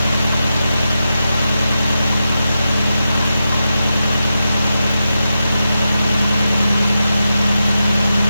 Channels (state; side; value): inverted; both; correlation -0.89